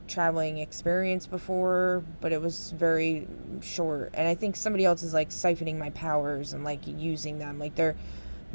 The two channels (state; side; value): inverted; both; correlation -1.00